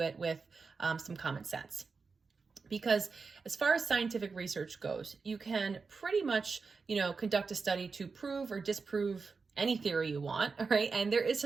with some common sense. Because as far as scientific research goes, you can pretty much, conduct a study to prove or disprove any theory you want, all right? And there is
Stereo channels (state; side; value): quieter; left; 4.7 dB